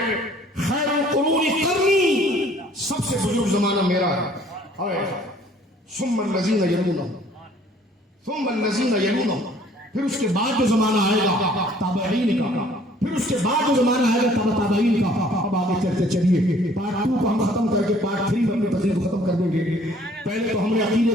خیر القرون قرنی، سب سے بزرگ زمانہ میرا ہے، ثم الذین یلونہم ثم الذین یلونہم، پھر اس کے بعد جو زمانہ آئے گا تابعین کا، پھر اس کے بعد جو زمانہ آئے گا تابعین کا۔ اب آگے چلتے چلیے، پارٹ 2 کو ہم ختم کر کے پارٹ 3 میں اپنی تقریر کو ختم کر دیں گے۔ پہلے تو ہم نے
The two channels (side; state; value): both; normal; correlation 0.57